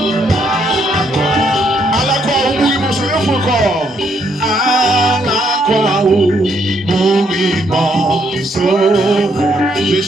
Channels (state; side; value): normal; both; correlation 0.72